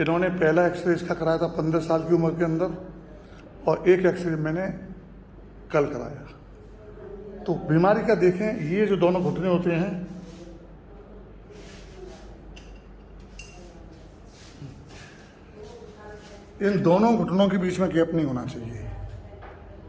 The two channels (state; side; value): identical; both; correlation 1.00